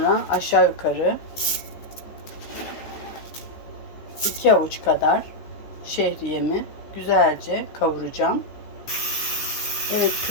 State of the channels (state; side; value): late; right; 15 ms